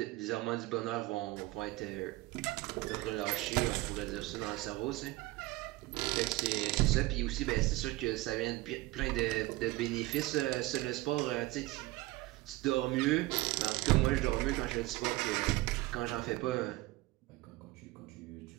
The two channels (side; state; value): left; quieter; 19.6 dB